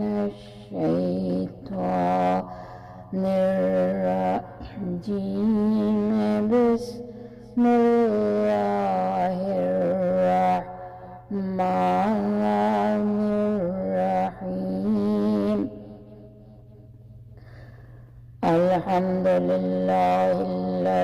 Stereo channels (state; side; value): identical; both; correlation 1.00